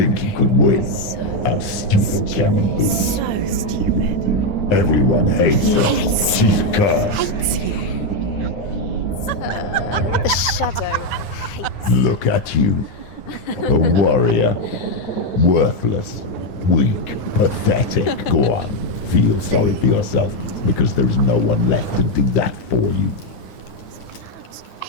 you could win? How stupid can you be? So stupid. Everyone hates her. She's cursed. Hates you. The shadow hates Look at you. A warrior. Worthless. Weak. Pathetic. Go on. Feel sorry for yourself, because there is no one left to do that for you.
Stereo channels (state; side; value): late; right; 9.6 ms